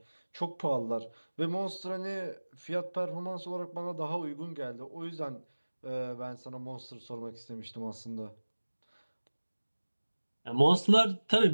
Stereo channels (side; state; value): both; inverted; correlation -1.00